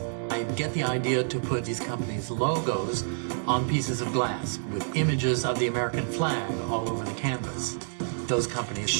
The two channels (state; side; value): silent; left; digital silence